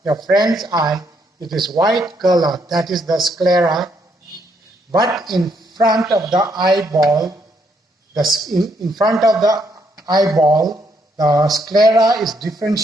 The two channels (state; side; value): normal; both; correlation 0.73